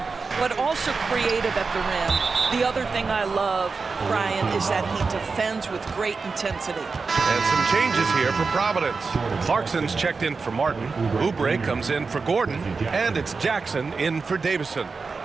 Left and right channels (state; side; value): quieter; left; 4.5 dB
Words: but also creative at the rim. The other thing I love, Brian, is that he defends with great intensity. And some changes here for Providence. Clarkson's checked in for Martin. Oubre comes in for Gordon. And it's Jackson in for Davison.